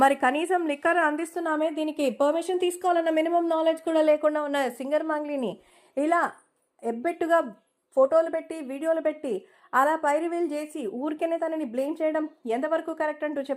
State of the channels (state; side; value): identical; both; correlation 1.00